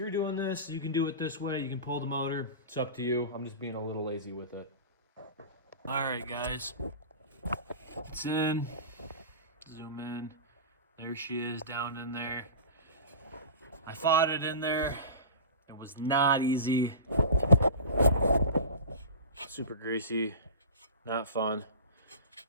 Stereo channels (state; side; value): inverted; both; correlation -0.33